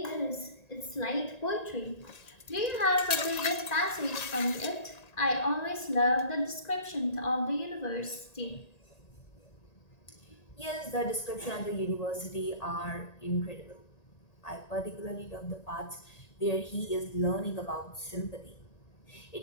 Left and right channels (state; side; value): late; right; 1.9 ms